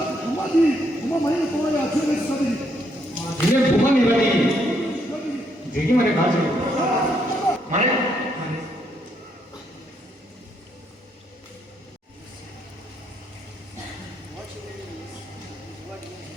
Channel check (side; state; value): both; normal; correlation 0.74